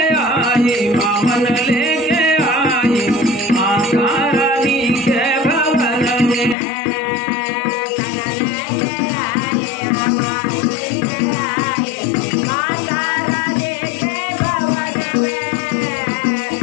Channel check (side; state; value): right; drops out; at 6.6 s